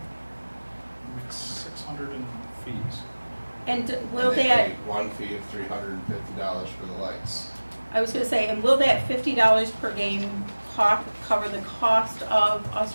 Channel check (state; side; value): inverted; both; correlation -1.00